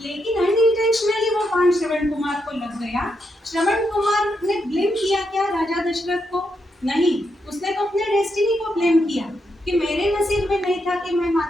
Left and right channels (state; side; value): normal; both; correlation 0.82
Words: अनइंटेंशनली वो बाण श्रवण कुमार को लग गया। श्रवण कुमार ने ब्लेम किया क्या राजा दशरथ को? नहीं, उसने तो अपने डेस्टिनी को ब्लेम किया कि मेरे नसीब में नहीं था कि मैं